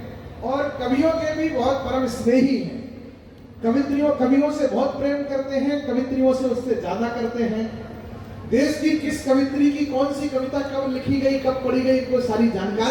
और कवियों के भी बहुत परम स्नेही हैं। कवियों से बहुत प्रेम करते हैं, कवित्रियों से उससे ज्यादा करते हैं। देश की किस कवित्री की कौन सी कविता कब लिखी गई, कब पढ़ी गई, इनको सारी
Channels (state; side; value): identical; both; correlation 1.00